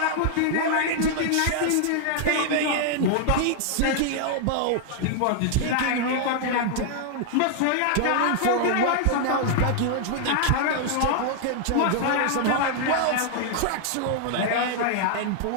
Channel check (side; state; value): both; different; correlation 0.00